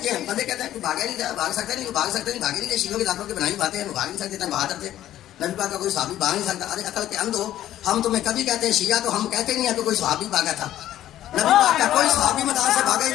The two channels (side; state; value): right; quieter; 12.8 dB